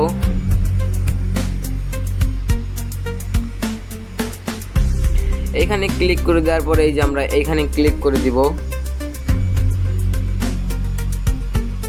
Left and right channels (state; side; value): identical; both; correlation 1.00